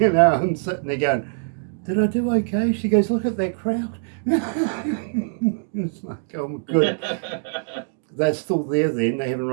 I'm sitting there going, did I do okay? She goes, look at that crowd. It's like, oh, good. They're still there then. They haven't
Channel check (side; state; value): left; silent; digital silence